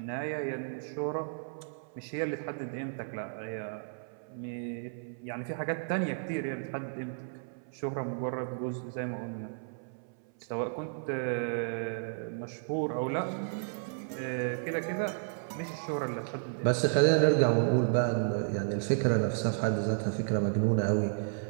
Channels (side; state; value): left; silent; 56 dB below the other